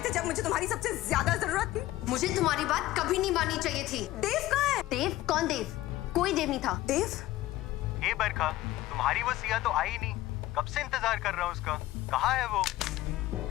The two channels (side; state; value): right; quieter; 16.2 dB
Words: थे जब मुझे तुम्हारी सबसे ज्यादा जरूरत थी। मुझे तुम्हारी बात कभी नहीं माननी चाहिए थी। देव कहाँ है? देव? कौन देव? कोई देव नहीं था। देव? हे बरखा, तुम्हारी वो सिया तो आई नहीं। कब से इंतजार कर रहा हूँ उसका। कहाँ है वो?